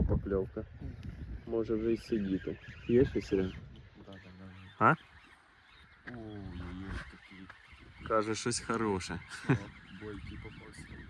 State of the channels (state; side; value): identical; both; correlation 1.00